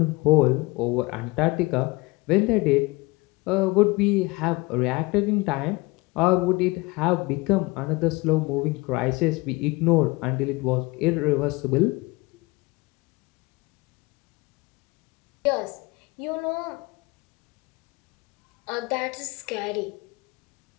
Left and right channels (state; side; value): quieter; right; 23.8 dB